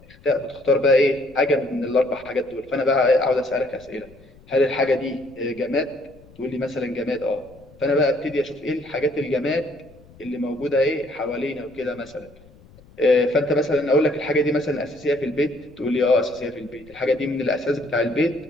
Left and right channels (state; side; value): noise; left; rumble, 25 dB below the sound